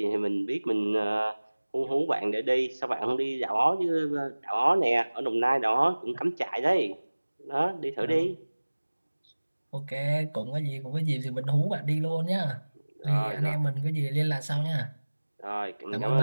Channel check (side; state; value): both; inverted; correlation -1.00